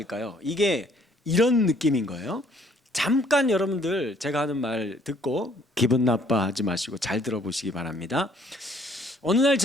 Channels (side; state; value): both; normal; correlation 0.62